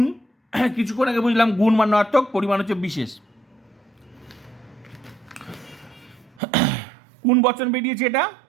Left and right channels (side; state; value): left; drops out; at 6.4 s